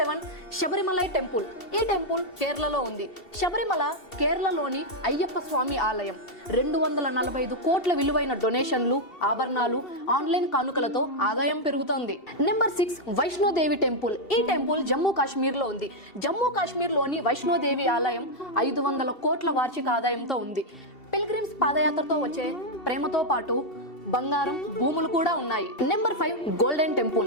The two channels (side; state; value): right; late; 2.7 ms